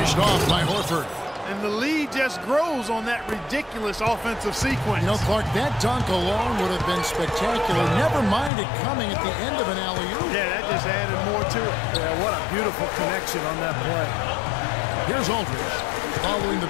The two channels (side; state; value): right; drops out; at 8.5 s